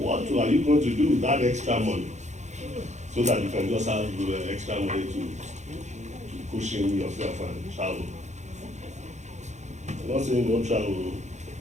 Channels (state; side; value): late; left; 0.34 ms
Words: are you going to do with that extra money? So that you can just have extra money to cushion yourself and travel. I'm not saying don't travel,